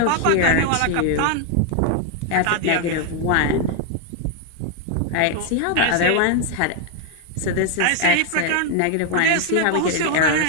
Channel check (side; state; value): both; different; correlation 0.00